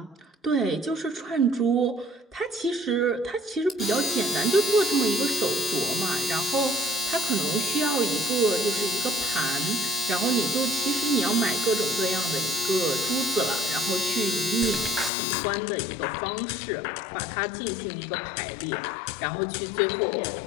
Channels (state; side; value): drops out; right; at 15.1 s